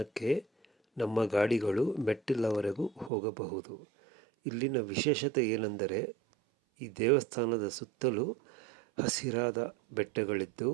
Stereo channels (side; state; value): left; drops out; at 3.1 s